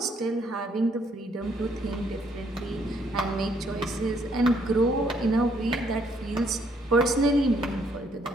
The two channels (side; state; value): both; normal; correlation 0.69